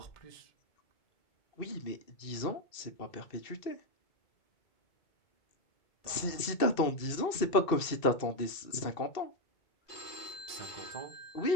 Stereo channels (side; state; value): right; late; 2.6 ms